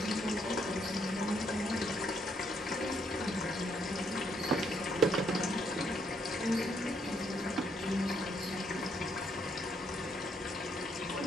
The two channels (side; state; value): both; normal; correlation 0.72